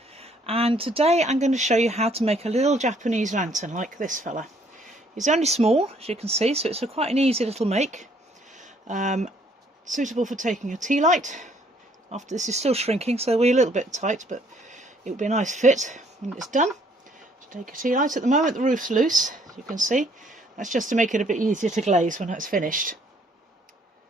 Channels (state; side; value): normal; both; correlation 0.64